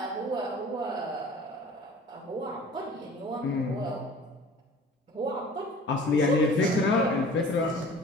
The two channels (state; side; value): normal; both; correlation 0.45